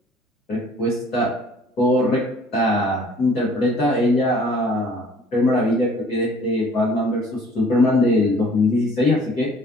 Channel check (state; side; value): normal; both; correlation 0.55